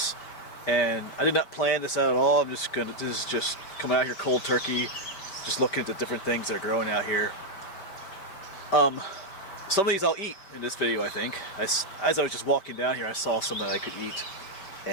And I did not plan this out at all. This is just coming out here cold turkey, just looking at the different things that are growing out here. Some of these I'll eat in this video, I think. As I was just walking down here, I saw some that I could eat.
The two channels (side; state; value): right; late; 5.2 ms